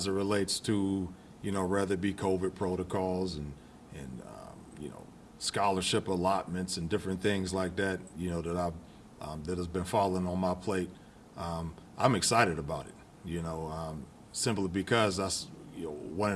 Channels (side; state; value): both; identical; correlation 1.00